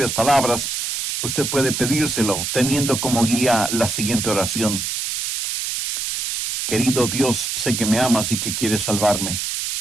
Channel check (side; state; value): right; noise; hiss, 2 dB below the sound